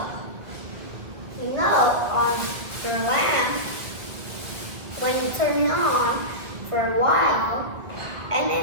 you know, on the lamp, when you turn it on for a while, and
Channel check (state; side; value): late; left; 1.9 ms